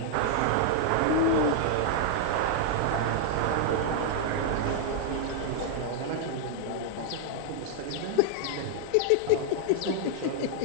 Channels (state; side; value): different; both; correlation -0.01